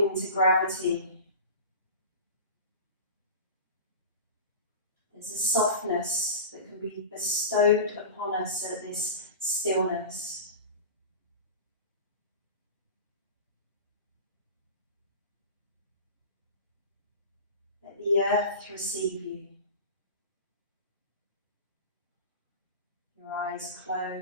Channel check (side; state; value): both; inverted; correlation -0.32